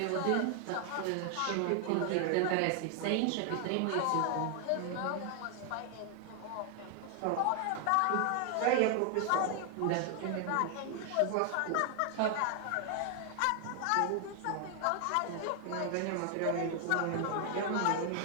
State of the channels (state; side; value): different; both; correlation 0.00